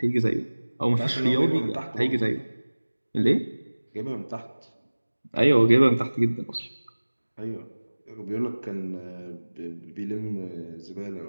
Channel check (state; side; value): inverted; both; correlation -1.00